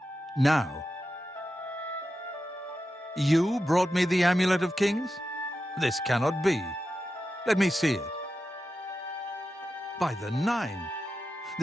Now. You brought me the Amulet of Kings? This cannot be. Let me see it. By the Nine!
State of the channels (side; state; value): both; normal; correlation 0.90